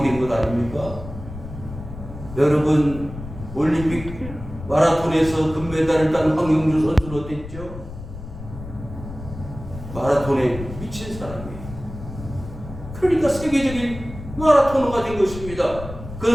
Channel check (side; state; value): left; noise; rumble, 12 dB below the sound